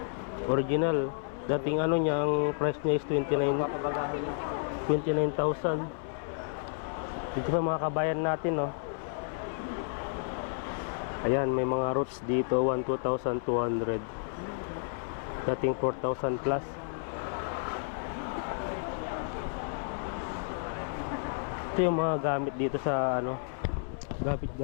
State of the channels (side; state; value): right; silent; 57 dB below the other